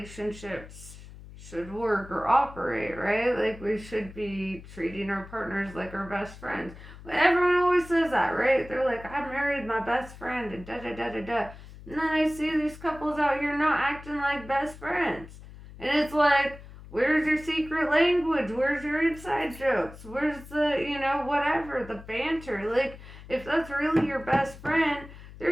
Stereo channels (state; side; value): noise; left; hum, 17 dB below the sound